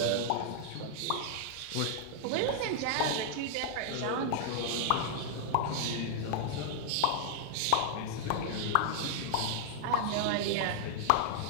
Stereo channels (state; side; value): different; both; correlation -0.01